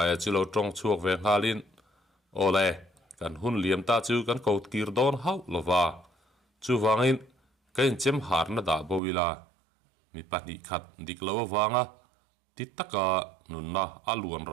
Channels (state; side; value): drops out; left; at 9.0 s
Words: chu lo tong chuak ve ngalin ole kan hun liam ta chu kan kaut kir don hau lova chu wangin kain chem har na da bowila mi pani khat dik lo wanga ti taka nunna aluan